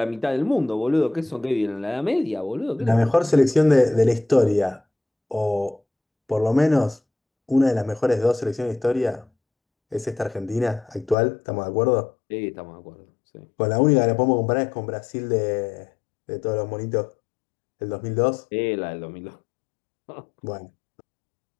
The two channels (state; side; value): drops out; right; at 11.2 s